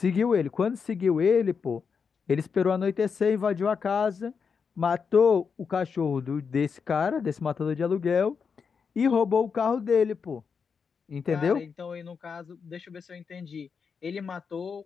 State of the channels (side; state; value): right; quieter; 5.9 dB